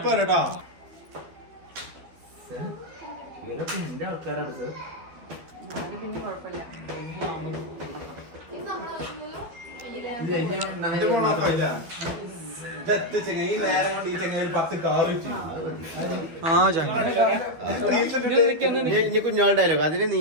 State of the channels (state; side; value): late; left; 12 ms